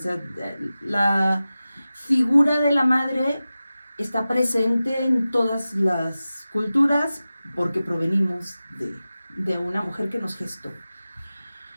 la figura de la madre está presente en todas las culturas porque provenimos de una mujer que nos gestó.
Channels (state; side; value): inverted; both; correlation -0.95